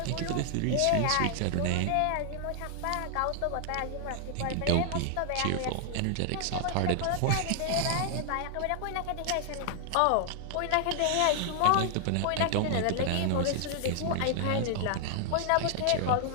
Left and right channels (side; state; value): both; different; correlation 0.00